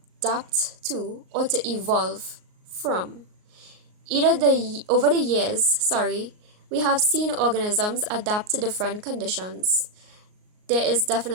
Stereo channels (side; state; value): left; late; 38 ms